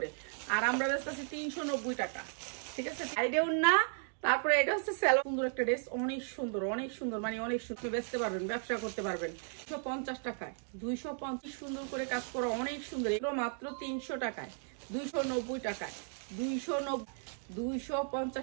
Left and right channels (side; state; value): left; silent; 54 dB below the other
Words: আর আমরা ব্যস্ত আছি 390 টাকা, ঠিক আছে। সাইডেও না, তারপরে এটা হচ্ছে স্যালো, সুন্দর একটা ড্রেস, অনেক সুন্দর অনেক সুন্দর, মানে অনেক সুন্দর। বেচতে পারবেন, ব্যবসা করতে পারবেন। 250 টাকায় 250 সুন্দর করে কাজ করা, অনেক সুন্দর। এগুলো মাত্র 300 টাকায়, 290 টাকায়,